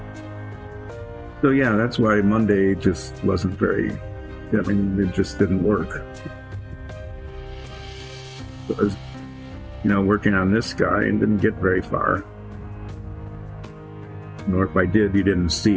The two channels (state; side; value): identical; both; correlation 1.00